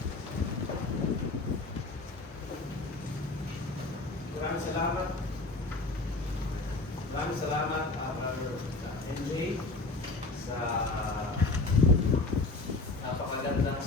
Maraming salamat, Brother NJ, sa napakagandang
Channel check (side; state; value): right; quieter; 3.3 dB